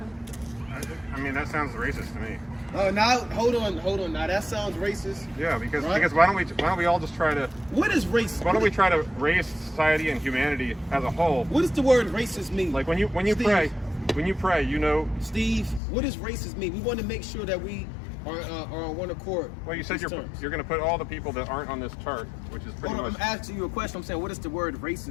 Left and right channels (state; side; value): drops out; right; at 15.8 s